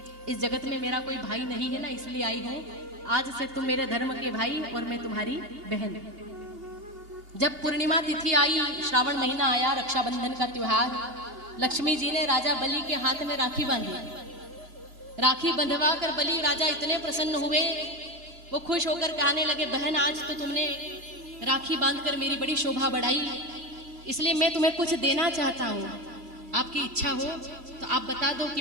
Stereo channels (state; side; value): late; left; 2.7 ms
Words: इस जगत में मेरा कोई भाई नहीं है ना, इसलिए आई हूँ, आज से तुम मेरे धर्म के भाई और मैं तुम्हारी बहन। जब पूर्णिमा तिथि आई, श्रावण महीना आया, रक्षाबंधन का त्योहार, लक्ष्मी जी ने राजा बलि के हाथ में राखी बांधी। राखी बंधवा कर बलि राजा इतने प्रसन्न हुए, वो खुश होकर कहने लगे बहन आज तो तुमने राखी बांधकर मेरी बड़ी शोभा बढ़ाई, इसलिए मैं तुम्हें कुछ देना चाहता हूँ, आपकी इच्छा हो तो आप बता दो कि